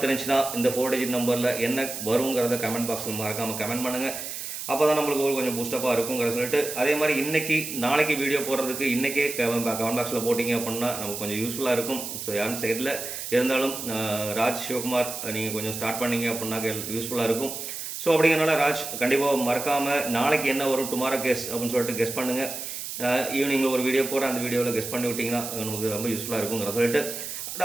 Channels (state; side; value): noise; right; hiss, 7 dB below the sound